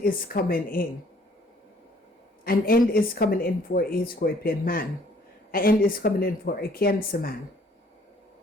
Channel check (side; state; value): both; normal; correlation 0.60